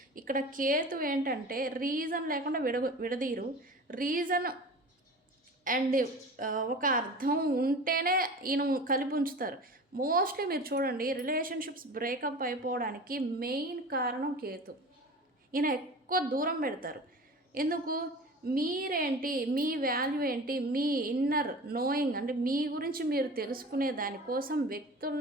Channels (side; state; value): both; normal; correlation 0.36